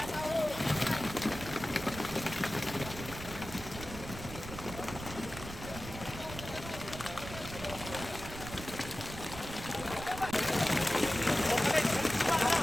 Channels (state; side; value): noise; right; rumble, 11 dB below the sound